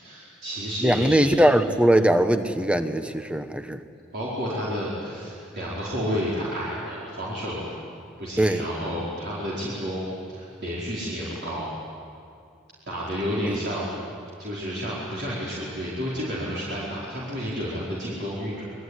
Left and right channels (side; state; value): both; normal; correlation 0.77